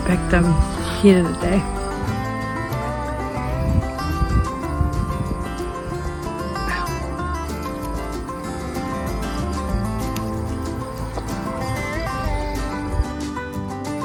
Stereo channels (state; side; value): identical; both; correlation 1.00